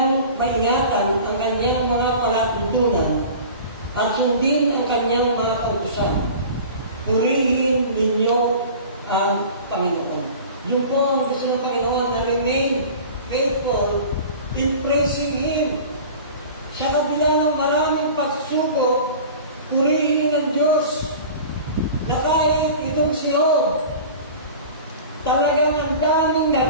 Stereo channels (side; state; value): both; inverted; correlation -0.39